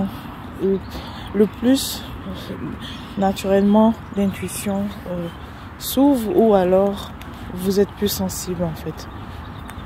le plus naturellement l'intuition s'ouvre ou alors vous êtes plus sensible en fait.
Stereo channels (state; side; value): identical; both; correlation 1.00